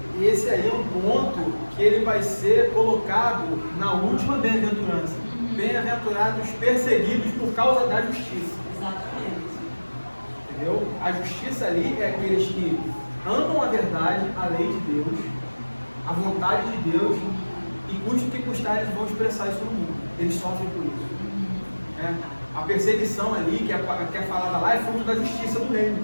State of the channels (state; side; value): inverted; both; correlation -1.00